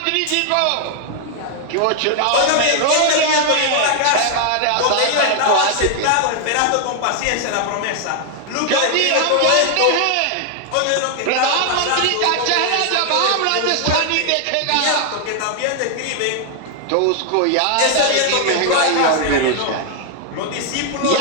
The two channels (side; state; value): both; different; correlation 0.00